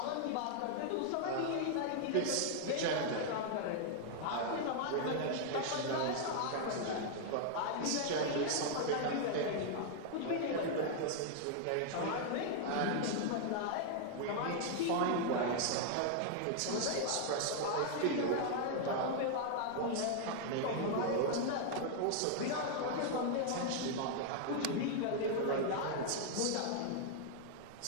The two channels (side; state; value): both; different; correlation 0.00